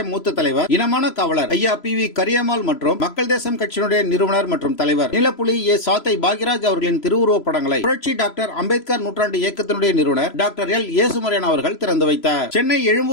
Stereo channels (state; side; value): late; right; 3.0 ms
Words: மூத்த தலைவர் இனமான காவலர் ஐயா PV கரியம்மாள் மற்றும் மக்கள் தேசம் கட்சியினுடைய நிறுவனர் மற்றும் தலைவர் நீலப்புலி சாத்தை பாக்யராஜ் அவர்களின் திருவுருவப் படங்களை புரட்சி டாக்டர் அம்பேத்கர் நூற்றாண்டு இயக்கத்தினுடைய நிறுவனர் டாக்டர் எல் ஏசுமரியன் அவர்கள் திறந்து வைத்தார். சென்னை